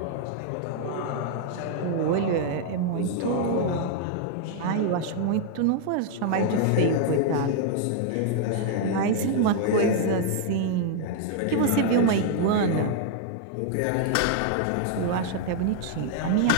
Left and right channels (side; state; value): both; different; correlation 0.00